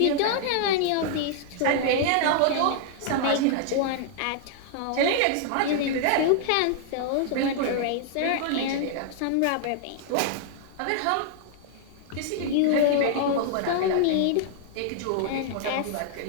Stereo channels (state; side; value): different; both; correlation -0.01